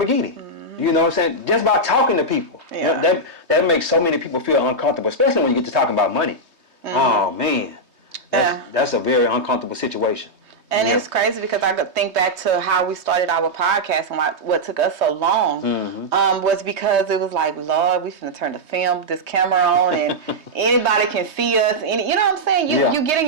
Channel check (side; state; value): left; late; 3.2 ms